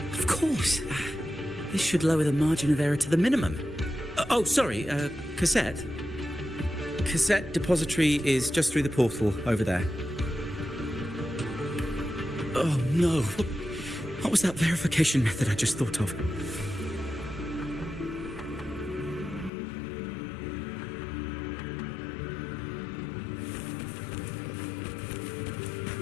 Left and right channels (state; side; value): drops out; right; at 19.5 s